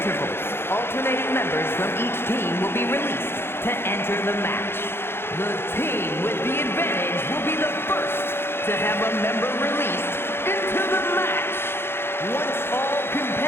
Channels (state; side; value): late; right; 0.11 ms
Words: alternating members from each team will be released to enter the match. The team with the advantage will be the first to have a member released into the match. Once all